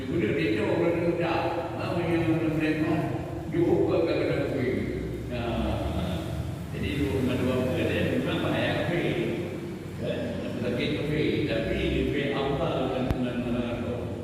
budak dia jauh dari budak. Apa yang melempar? Juga kadang-kadang kuih. Jadi dua dia memang bahaya kuih. Lagi kuih tapi lebih afdal dengan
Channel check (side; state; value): both; identical; correlation 1.00